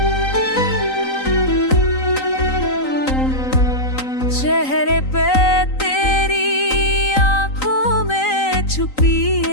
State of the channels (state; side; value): late; right; 3.9 ms